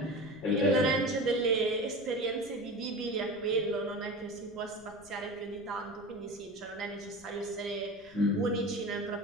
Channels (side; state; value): left; noise; rumble, 25 dB below the sound